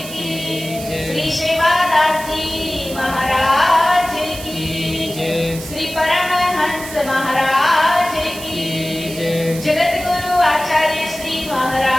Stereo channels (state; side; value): noise; right; hiss, 12 dB below the sound